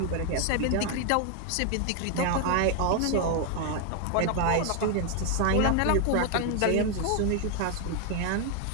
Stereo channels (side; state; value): both; different; correlation 0.01